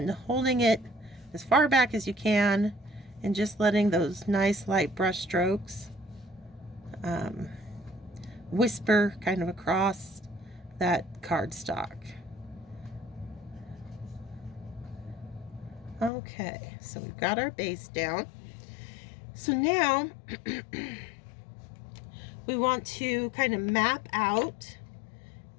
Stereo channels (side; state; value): right; drops out; at 16.1 s